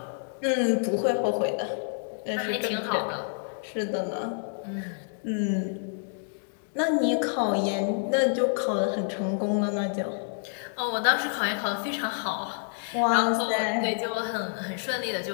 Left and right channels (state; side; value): silent; right; digital silence